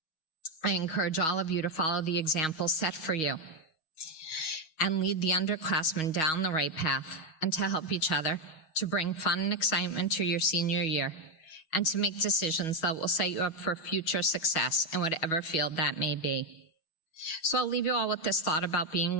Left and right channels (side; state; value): right; late; 6.3 ms